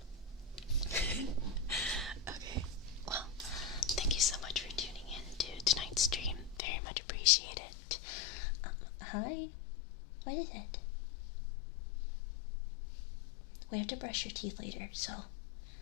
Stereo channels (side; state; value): right; drops out; at 6.6 s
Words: Okay. Well, thank you so much for tuning in to tonight's stream. Very much appreciate it. Hi. What is it? We have to brush your teeth later, so